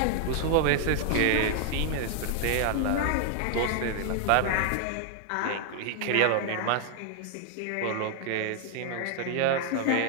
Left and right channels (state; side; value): different; both; correlation 0.00